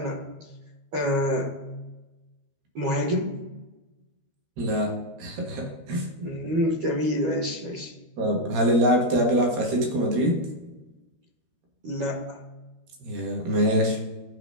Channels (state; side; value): late; left; 13 ms